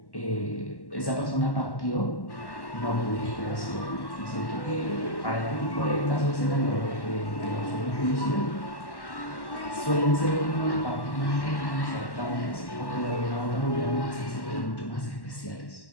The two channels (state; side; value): late; right; 1.1 ms